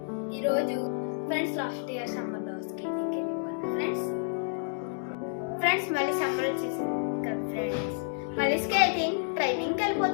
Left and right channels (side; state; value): right; silent; digital silence